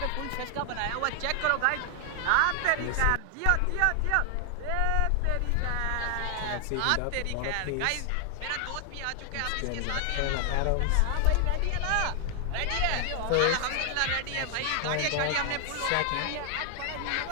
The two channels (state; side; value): different; both; correlation 0.00